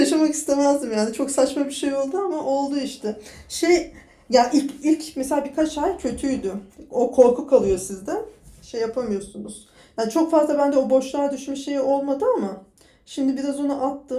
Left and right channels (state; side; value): identical; both; correlation 1.00